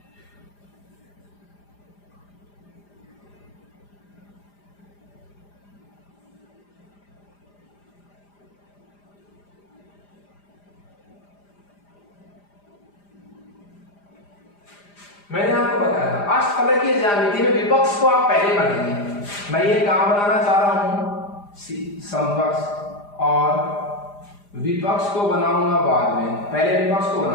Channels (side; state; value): right; late; 4.9 ms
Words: मैंने आपको बताया था अष्टफलकीय ज्यामिति में विपक्ष को आप पहले बनाएंगे। मैं ये काम बनाना चाह रहा हूं, समपक्ष और विपक्ष को बनाऊंगा बाद में, पहले विपक्ष को